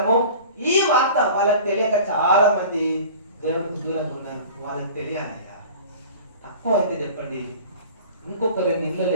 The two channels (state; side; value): inverted; both; correlation -0.41